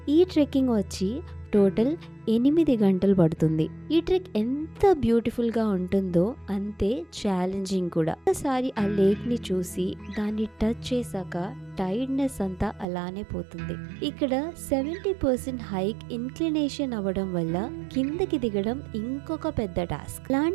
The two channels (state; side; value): drops out; left; at 12.9 s